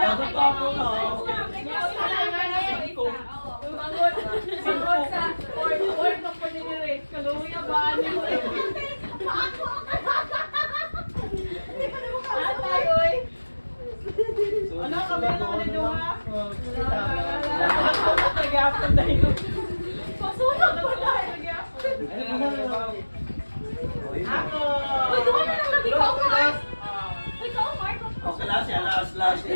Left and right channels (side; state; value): both; inverted; correlation -1.00